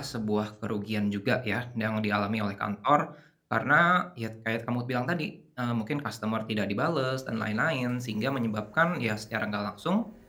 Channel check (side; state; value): both; identical; correlation 1.00